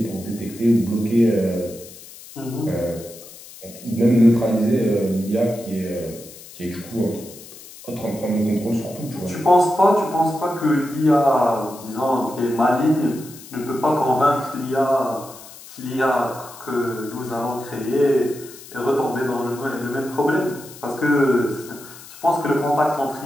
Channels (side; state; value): left; noise; hiss, 18 dB below the sound